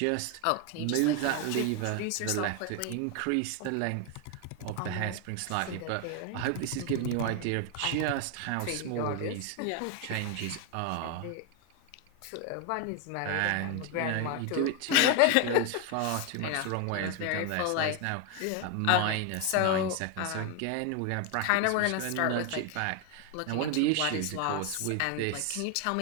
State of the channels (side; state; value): both; different; correlation 0.01